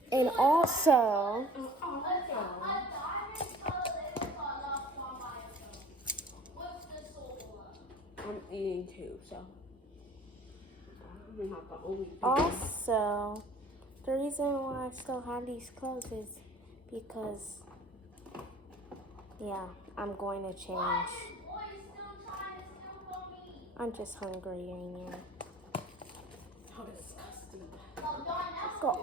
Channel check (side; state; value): both; normal; correlation 0.47